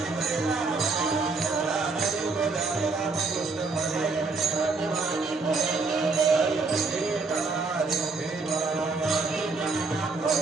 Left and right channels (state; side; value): quieter; left; 4.0 dB